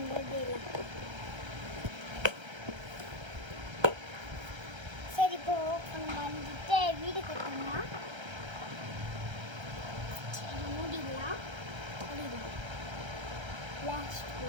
பண்ணிடலாம். சரி, இப்போ ஓப்பன் பண்ணிட்டு வீடு கட்டணும். சரி, மூடிடலாம். Last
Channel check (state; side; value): late; left; 1.3 ms